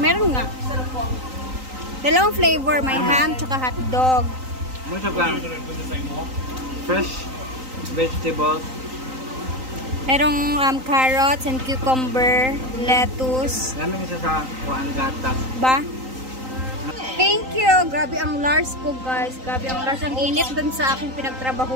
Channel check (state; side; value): late; left; 3.9 ms